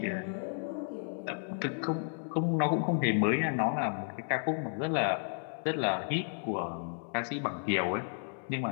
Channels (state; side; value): silent; right; 56 dB below the other